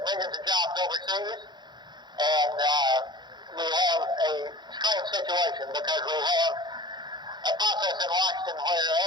millions of jobs overseas, and we have a strange situation because we have a process in Washington where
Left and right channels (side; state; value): left; late; 0.21 ms